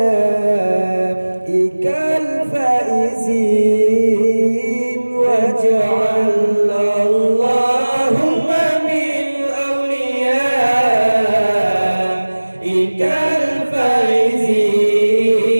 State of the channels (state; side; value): inverted; both; correlation -1.00